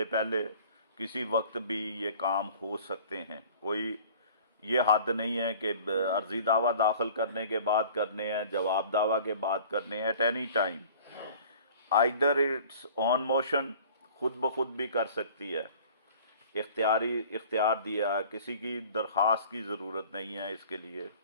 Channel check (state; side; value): inverted; both; correlation -0.47